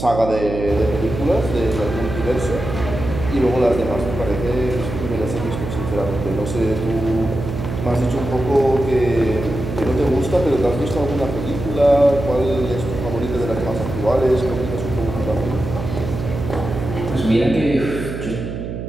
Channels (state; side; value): noise; right; hum, 6 dB below the sound